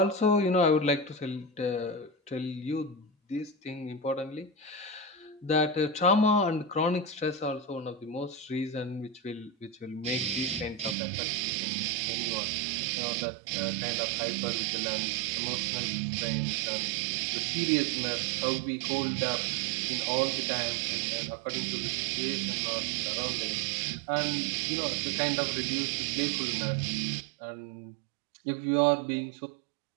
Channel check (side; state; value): left; drops out; at 11.0 s